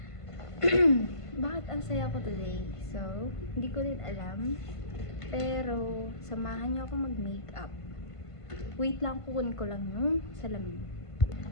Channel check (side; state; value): right; late; 1.5 ms